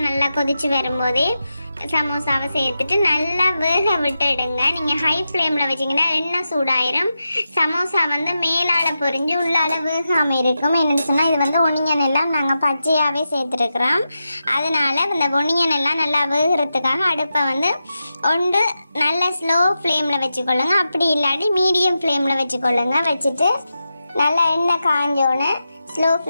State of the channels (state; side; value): inverted; both; correlation -0.90